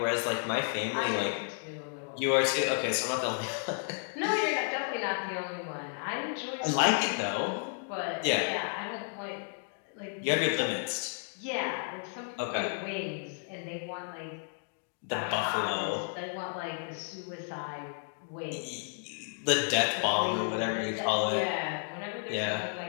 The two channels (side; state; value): right; silent; 56 dB below the other